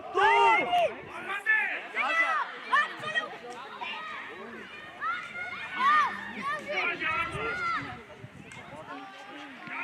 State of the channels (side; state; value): both; identical; correlation 1.00